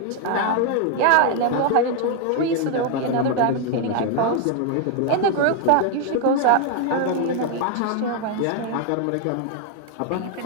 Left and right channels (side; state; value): both; different; correlation 0.00